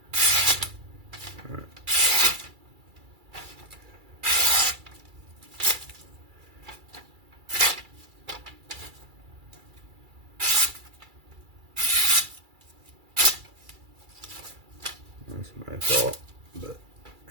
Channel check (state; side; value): late; left; 2.3 ms